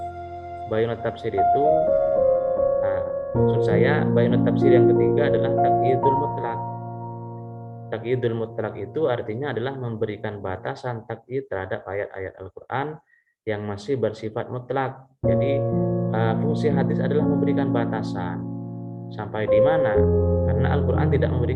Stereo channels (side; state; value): both; identical; correlation 1.00